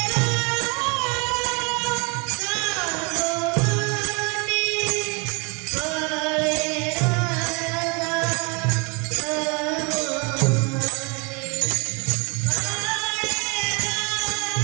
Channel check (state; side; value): quieter; left; 31.5 dB